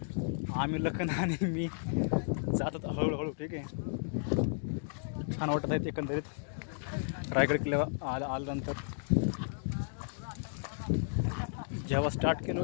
आम्ही लखन आणि मी जातात हळूहळू. ठीक आहे, छान वाटत आहेत एकंदरीत रायगड किल्ल्यावर आल्यानंतर. जेव्हा स्टार्ट केलं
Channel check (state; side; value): silent; right; digital silence